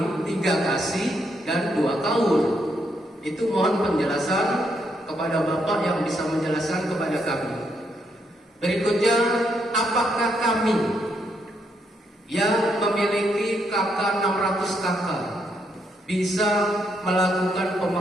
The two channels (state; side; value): normal; both; correlation 0.77